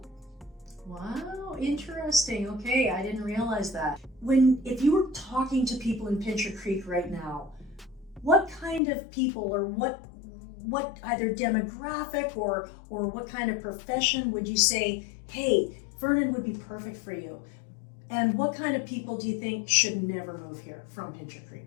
Wow, interesting. Okay, I didn't realize that. If you were talking to people in Pincher Creek right now, what kind of people or what either demographic or what kind of profession would you say, hey, Vernon would be perfect for you? And what kind of people do you think should never move here from Pincher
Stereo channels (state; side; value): drops out; right; at 8.8 s